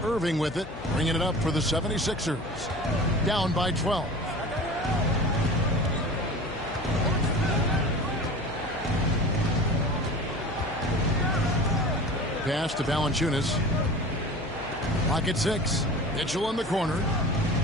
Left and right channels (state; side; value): noise; left; hum, 14 dB below the sound